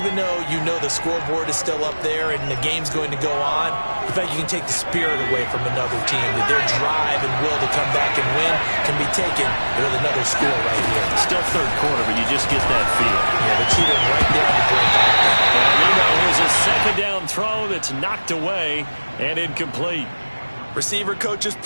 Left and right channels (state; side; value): inverted; both; correlation -1.00